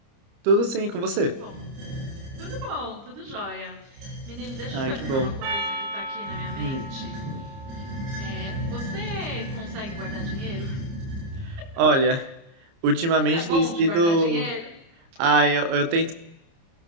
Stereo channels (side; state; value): left; late; 30 ms